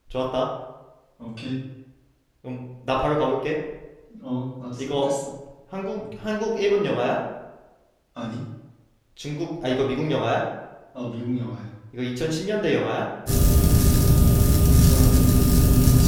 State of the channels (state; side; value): identical; both; correlation 1.00